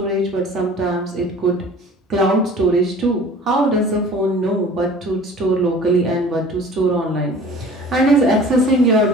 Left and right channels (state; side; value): normal; both; correlation 0.45